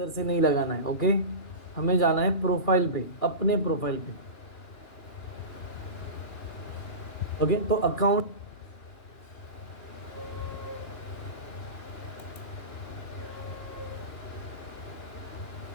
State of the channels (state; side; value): late; right; 2.9 ms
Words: से नहीं लगाना है। ओके, हमें जाना है प्रोफाइल पे, अपने प्रोफाइल पे। ओके, तो अकाउंट